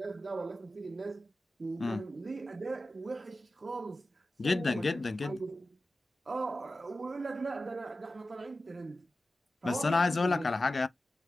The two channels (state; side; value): normal; both; correlation 0.94